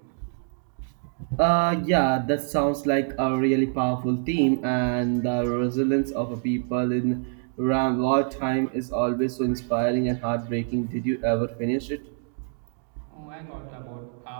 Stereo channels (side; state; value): left; silent; 60 dB below the other